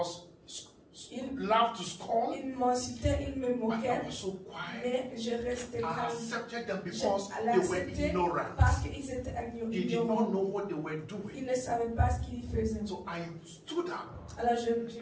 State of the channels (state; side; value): identical; both; correlation 1.00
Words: laughed to scorn, il m'insultait, il me but I moquait, was so quiet. mais je restais I calme. accepted them Je because they were l'acceptais ignorant. parce qu'ils étaient They did ignorants. not know what they were Ils doing. ne savaient pas ce qu'ils faisaient. So I stood up Alors je